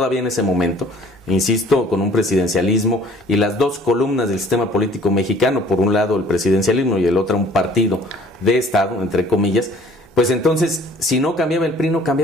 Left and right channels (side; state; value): both; normal; correlation 0.53